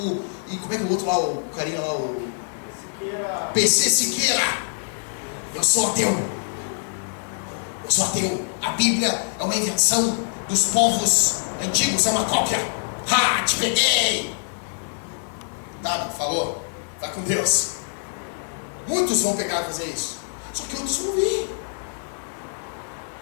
E como é que é o outro lá, o carinha lá, o... Siqueira. PC Siqueira. Eu sou ateu. A Bíblia é uma invenção dos povos antigos, é uma cópia. Ha, te peguei. Tá, falou. Vai com Deus. Muitos vão pegar e fazer isso. Só que outros vão vir.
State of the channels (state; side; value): silent; right; digital silence